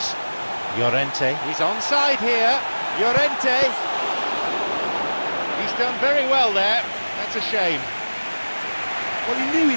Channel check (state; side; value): inverted; both; correlation -1.00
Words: Llorente. He's onside here. Llorente. He's done very well there. That's a shame. Well, he knew he